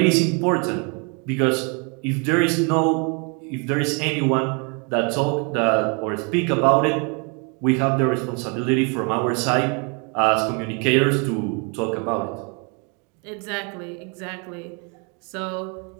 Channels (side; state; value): left; quieter; 34.7 dB